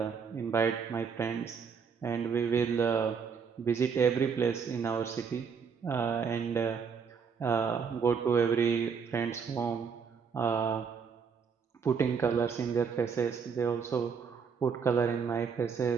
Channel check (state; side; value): quieter; left; 6.2 dB